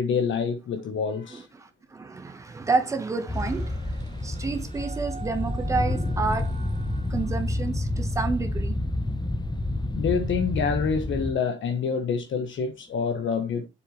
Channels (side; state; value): both; normal; correlation 0.61